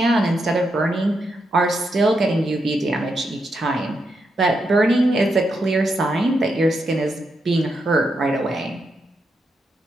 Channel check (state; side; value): normal; both; correlation 0.83